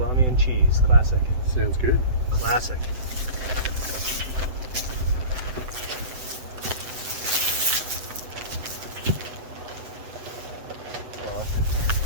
and cheese. Classic. Sounds good. Classic.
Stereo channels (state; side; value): late; left; 7.8 ms